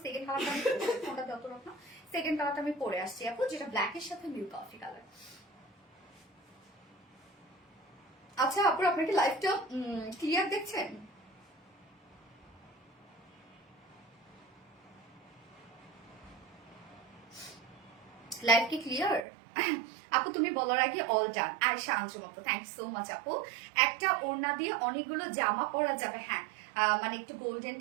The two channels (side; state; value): left; drops out; at 19.2 s